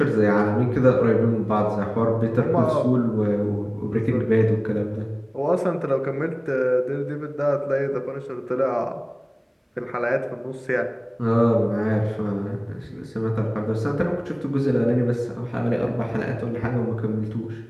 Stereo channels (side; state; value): both; identical; correlation 1.00